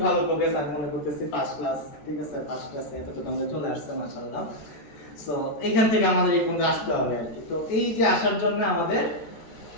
ভালো প্রোগ্রেস আমি মনে করতেছি, ফার্স্ট ক্লাস, ঠিক আছে? ফার্স্ট ক্লাসে এতটুকু আমরা চলে আসছে মাশাআল্লাহ। সো এইখান থেকে আমাদের এই পর্যন্ত আসতে হবে আর কি। তো এই যে আসার জন্য আমাদের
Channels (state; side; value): late; right; 13 ms